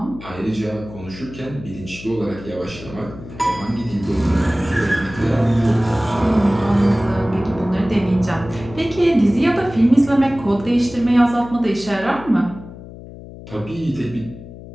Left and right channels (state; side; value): noise; left; hum, 15 dB below the sound